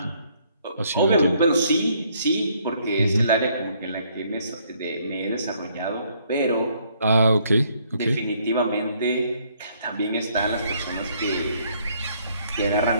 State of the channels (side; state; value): both; inverted; correlation -0.67